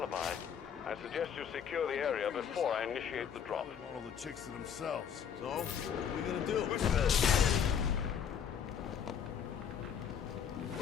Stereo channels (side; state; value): right; quieter; 7.9 dB